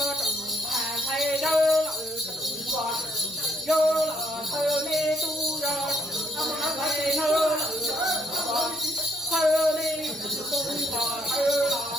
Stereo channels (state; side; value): normal; both; correlation 0.70